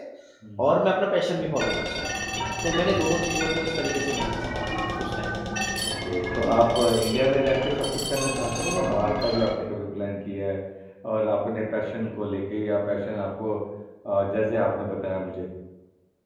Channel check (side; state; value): both; identical; correlation 1.00